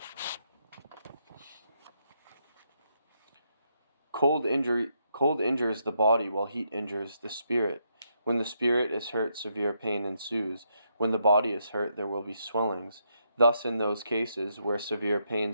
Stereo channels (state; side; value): inverted; both; correlation -0.78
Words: Cold injures the body, while heat injures the spirit. When the spirit is hurt, severe pain ensues. When the body is hurt, there will be swellings. Thus, in those cases where severe